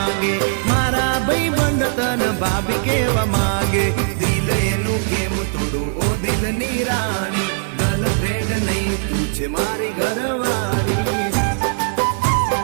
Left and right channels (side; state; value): left; silent; 56 dB below the other